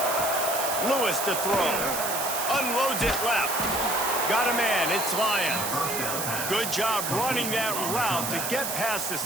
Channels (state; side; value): noise; right; hiss, 3 dB below the sound